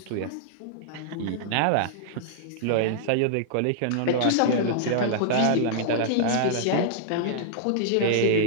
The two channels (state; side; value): different; both; correlation -0.01